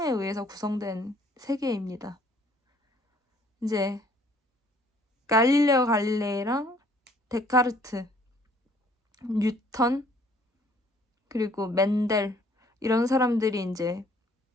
의해서 구성된 세계입니다. 이제 갈릴레오 갈릴레이랑 데카르트, 뉴턴, 그리고 맨델 이런 사람들이 이제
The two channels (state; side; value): normal; both; correlation 0.60